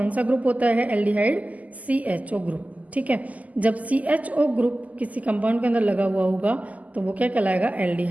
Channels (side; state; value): left; late; 0.076 ms